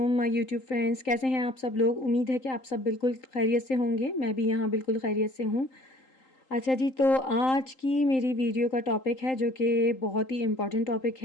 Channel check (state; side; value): late; right; 3.8 ms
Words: my YouTube friends, कैसे हैं आप सब लोग। उम्मीद है कि आप सब बिल्कुल खैरियत से होंगे। मैं भी यहाँ बिल्कुल खैरियत से हूँ। अच्छा जी, तो आज की मेरी वीडियो का टॉपिक है जो कि बहुत ही इम्पोर्टेंट टॉपिक